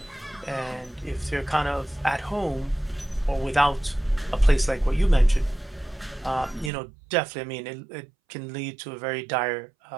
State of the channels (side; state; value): left; drops out; at 6.7 s